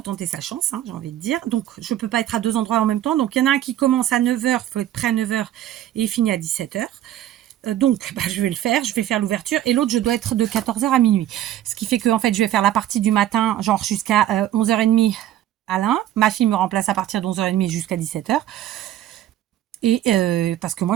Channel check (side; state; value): left; quieter; 12.4 dB